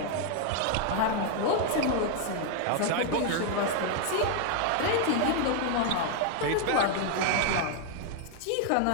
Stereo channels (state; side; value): different; both; correlation 0.00